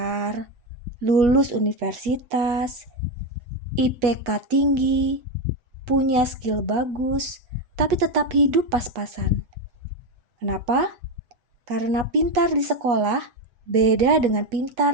lulus universitas, IPK tinggi, punya skill bagus, tapi tetap hidup pas-pasan. Kenapa? Karena pintar di sekolah beda dengan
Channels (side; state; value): left; late; 8.3 ms